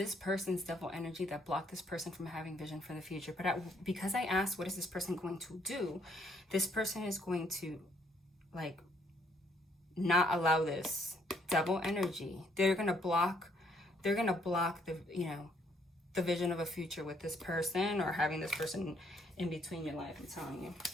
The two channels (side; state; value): both; normal; correlation 0.68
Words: person's devil energy that blocked this person from having vision for the future. But because I asked, what is this person going to do? This person is going to, like, not allow this devil energy. They're gonna block the, you know, the vision of a future with this person, or having this person in between your life. I'm telling